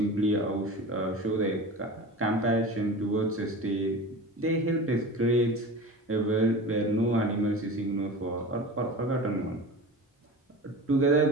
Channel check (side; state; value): both; normal; correlation 0.33